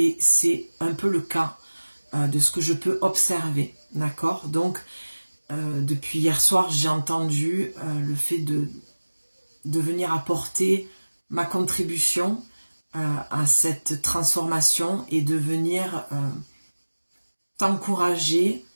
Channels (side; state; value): both; inverted; correlation -1.00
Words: c'est un peu le cas de ce que je peux observer, d'accord? Donc, depuis hier soir, j'ai entendu le fait de venir apporter ma contribution à cette transformation et de venir t'encourager